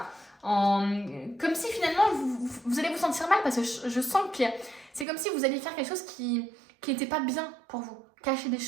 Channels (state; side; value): drops out; left; at 5.1 s